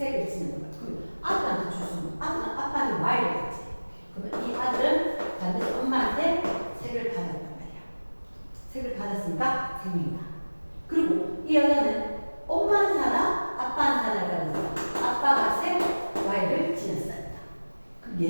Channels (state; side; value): inverted; both; correlation -1.00